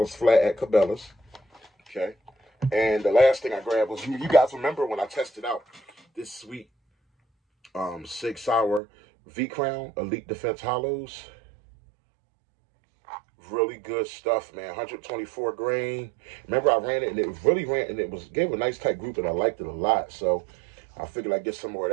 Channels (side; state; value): left; drops out; at 8.8 s